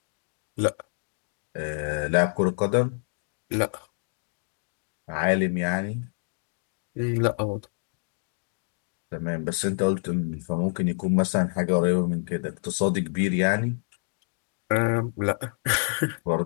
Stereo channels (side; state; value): right; silent; 60 dB below the other